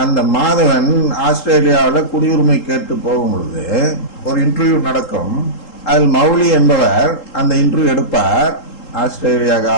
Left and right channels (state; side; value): late; right; 3.8 ms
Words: அந்த மாதவன் ஆஸ்திரேலியாவில குடியுரிமை கேட்டு போகும் பொழுது ஒரு இன்டர்வியூ நடக்கும். அதில் மௌலி என்பவர் அந்த இன்டர்வியூ எடுப்பார், ஆஸ்திரேலியா